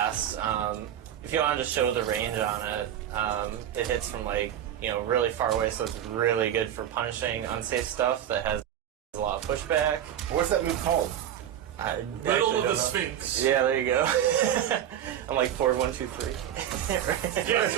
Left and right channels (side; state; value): left; quieter; 10.5 dB